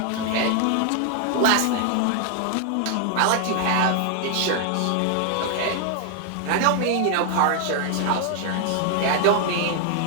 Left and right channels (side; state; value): both; different; correlation 0.00